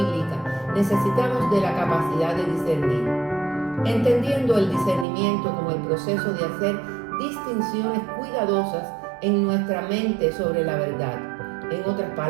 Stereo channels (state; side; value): drops out; left; at 5.1 s